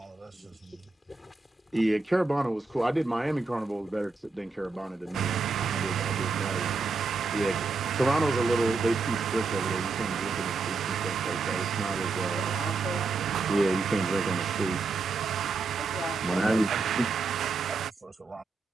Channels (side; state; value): left; quieter; 4.1 dB